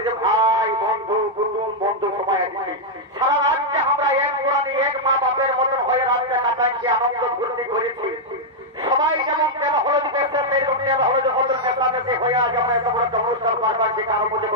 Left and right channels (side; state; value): both; normal; correlation -0.04